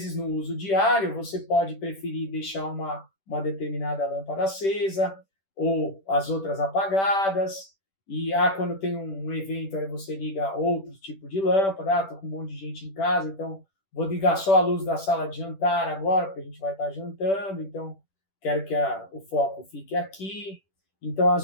no uso diário, você pode preferir deixar uma determinada lâmpada acesa ou as outras apagadas. E quando tem um evento, aí você liga outro tipo de lâmpada. Estou com um monte de gente em casa, então vou ligar só a luz da sala de jantar agora, porque a gente vai estar jantando, então quero que o foco fique aqui. Então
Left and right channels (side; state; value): right; late; 10 ms